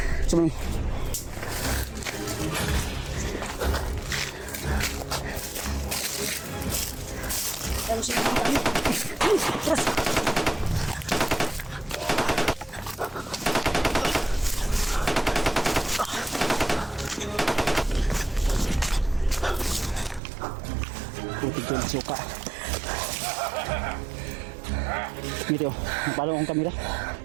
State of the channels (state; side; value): drops out; left; at 20.2 s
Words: Sumay. Ano sila ng kami? Tras! Putik yung suka. Dito, napalo akong kamera.